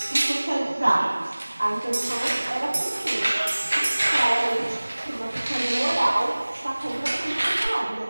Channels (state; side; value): inverted; both; correlation -1.00